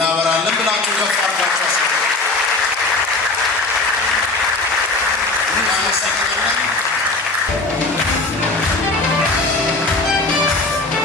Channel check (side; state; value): right; quieter; 3.2 dB